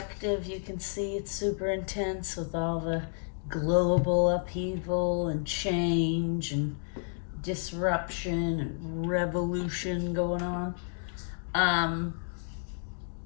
you can see it's super intense with all the global upheaval and change and disruption and revolution going on.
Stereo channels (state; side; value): silent; right; digital silence